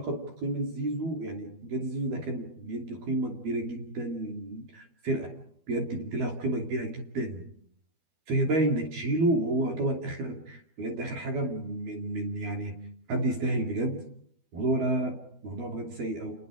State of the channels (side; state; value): left; late; 12 ms